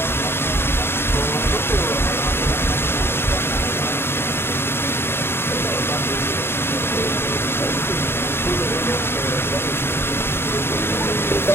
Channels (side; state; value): right; late; 0.11 ms